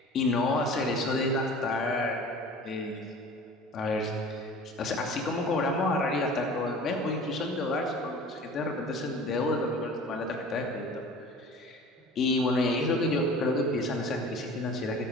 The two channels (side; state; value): both; normal; correlation 0.42